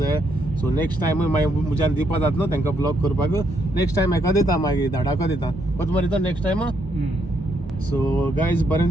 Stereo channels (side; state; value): both; normal; correlation 0.75